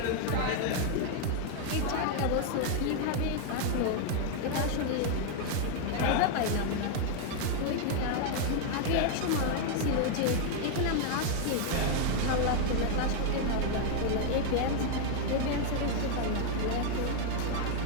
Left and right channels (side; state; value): both; different; correlation 0.00